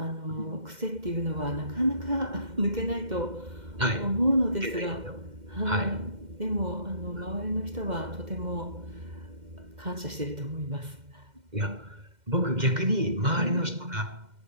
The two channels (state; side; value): late; left; 2.1 ms